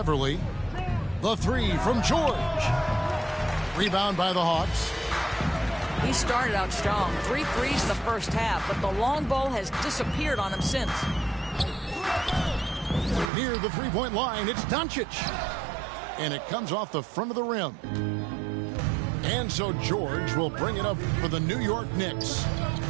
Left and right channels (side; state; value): left; drops out; at 13.3 s